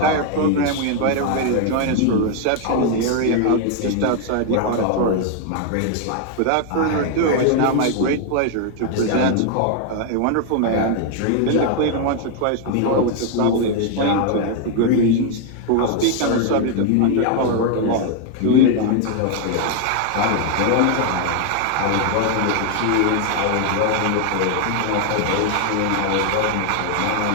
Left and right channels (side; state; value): both; different; correlation 0.00